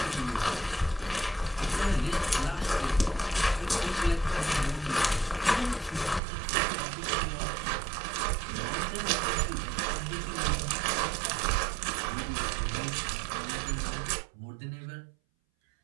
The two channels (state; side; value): drops out; left; at 6.2 s